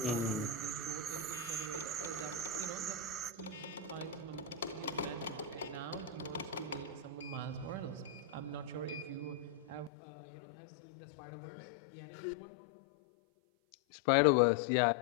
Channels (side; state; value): right; drops out; at 9.9 s